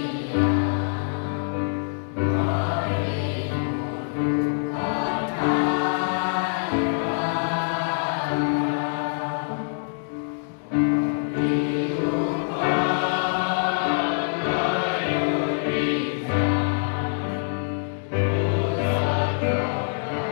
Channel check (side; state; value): right; silent; digital silence